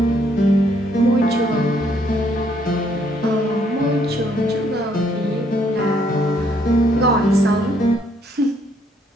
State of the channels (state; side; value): normal; both; correlation 0.69